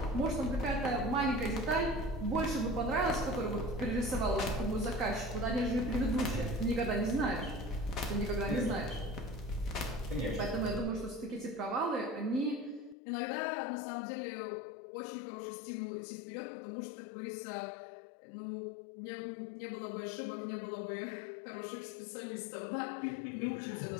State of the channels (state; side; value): drops out; right; at 13.0 s